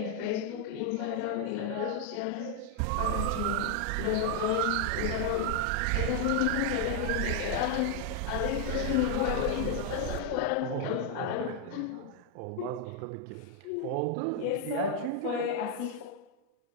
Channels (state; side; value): different; both; correlation 0.00